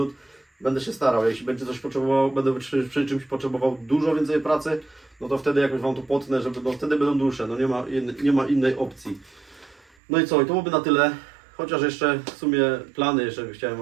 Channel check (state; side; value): drops out; left; at 9.9 s